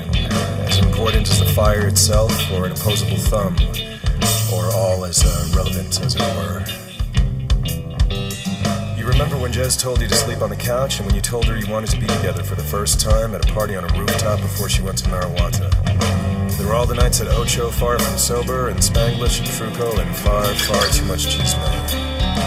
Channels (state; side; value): identical; both; correlation 1.00